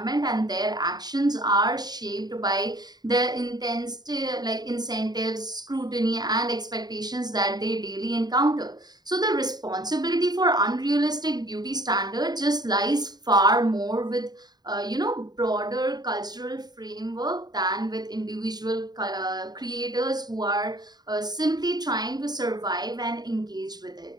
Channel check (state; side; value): late; left; 0.20 ms